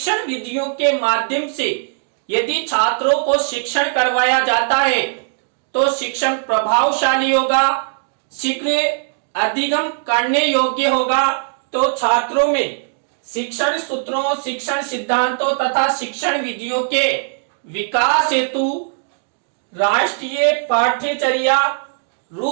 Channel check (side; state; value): left; silent; digital silence